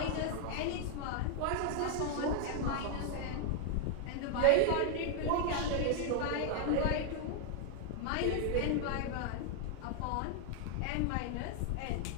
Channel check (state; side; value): different; both; correlation 0.00